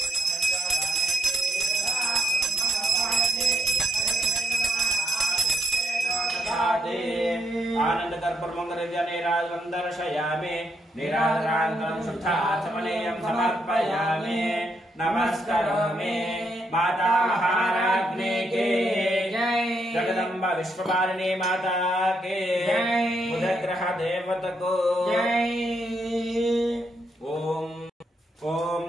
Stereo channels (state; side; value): normal; both; correlation 0.77